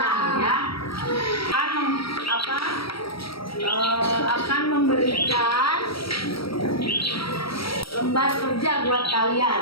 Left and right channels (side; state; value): right; late; 0.75 ms